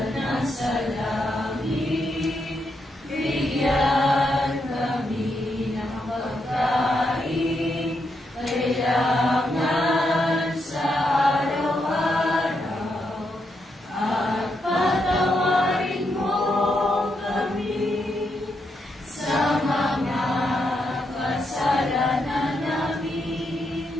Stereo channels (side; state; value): both; normal; correlation 0.81